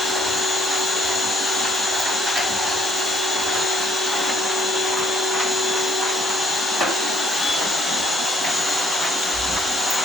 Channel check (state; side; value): normal; both; correlation 0.65